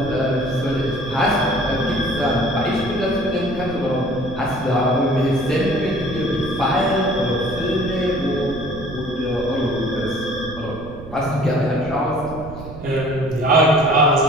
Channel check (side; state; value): right; noise; rumble, 13 dB below the sound